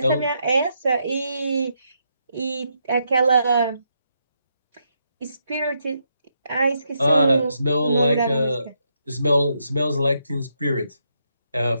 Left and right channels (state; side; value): inverted; both; correlation -0.80